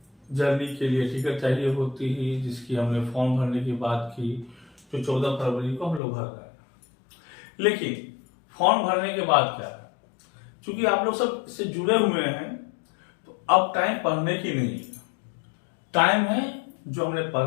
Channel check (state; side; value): drops out; right; at 6.0 s